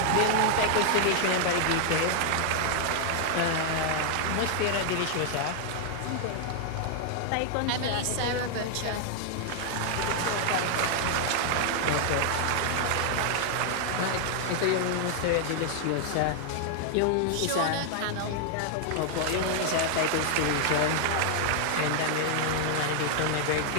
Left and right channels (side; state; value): both; different; correlation 0.00